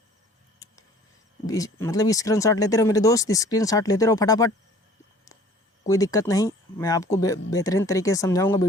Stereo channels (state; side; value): normal; both; correlation 0.51